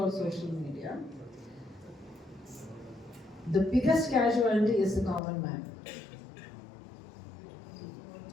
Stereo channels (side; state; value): right; drops out; at 5.2 s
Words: social media. The biggest casualty is the common man.